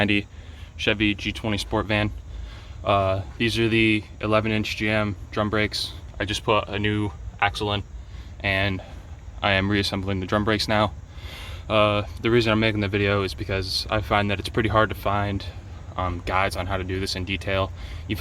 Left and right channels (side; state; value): both; identical; correlation 1.00